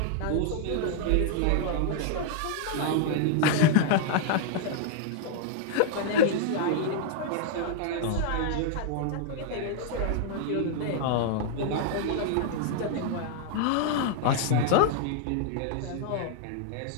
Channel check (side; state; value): both; different; correlation -0.01